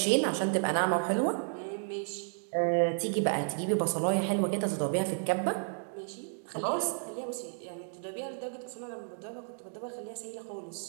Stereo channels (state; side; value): silent; left; 56 dB below the other